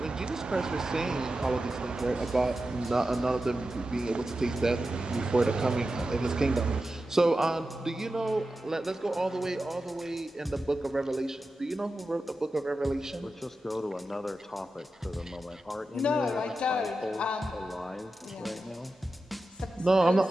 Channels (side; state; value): both; normal; correlation 0.92